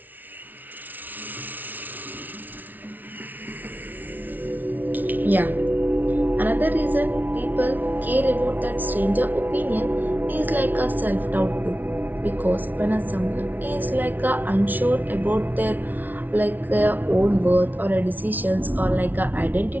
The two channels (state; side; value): late; left; 0.082 ms